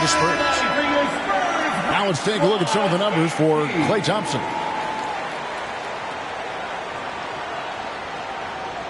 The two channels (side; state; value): both; identical; correlation 1.00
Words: Spurs. Now let's take a look at some of the numbers for Klay Thompson.